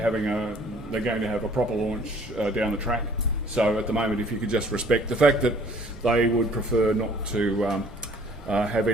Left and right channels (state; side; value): normal; both; correlation 0.55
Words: going to have a proper launch down the track. So at the moment, if you could just respect the fact that they would prefer not to have